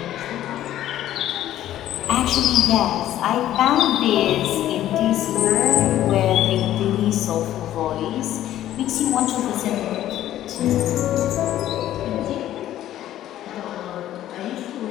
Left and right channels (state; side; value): quieter; right; 12.8 dB